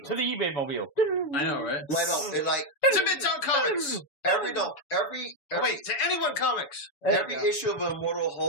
to the eBay mobile. I know, right? Right on. It to Midtown Comics. To Anyone Comics. Every issue of Immortal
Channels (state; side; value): late; right; 7.1 ms